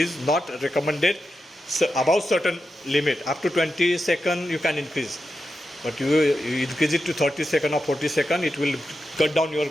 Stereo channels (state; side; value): normal; both; correlation 0.89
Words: not recommended. So above certain limit, up to 20 seconds you can increase, but you increase it to 30 seconds or 40 seconds, it will cut down your